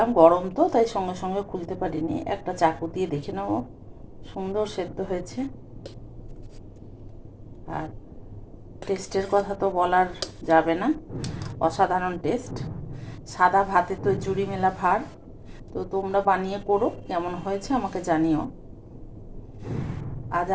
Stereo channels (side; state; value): both; identical; correlation 1.00